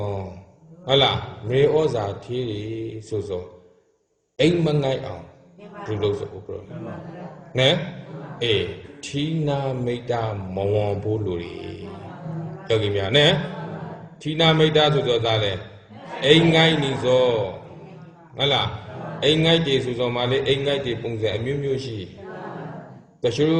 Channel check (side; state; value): both; identical; correlation 1.00